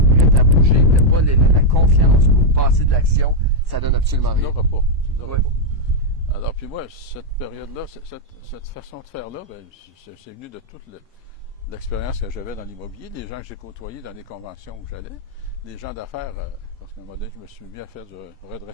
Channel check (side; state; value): both; normal; correlation -0.01